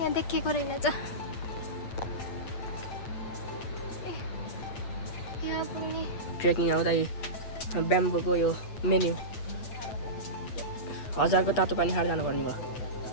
देखेको रहेनछ यहाँ पुग्ने ट्रेकिङ आउँदा ब्याम्बोको यो मेन्यु 1000 को तातो पानी खाएर जानुपर्ने भयो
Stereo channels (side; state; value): right; late; 8.5 ms